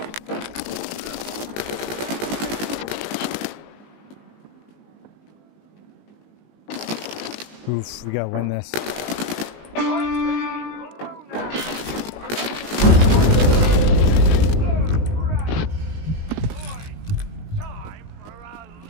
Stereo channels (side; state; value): right; late; 19 ms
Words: Oof, we gotta win this.